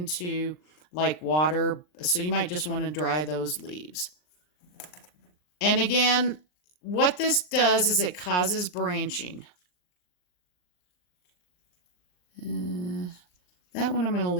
like water, so you might just want to dry those leaves. And again, what this does is it causes branching. That one I'm going to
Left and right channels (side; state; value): right; late; 39 ms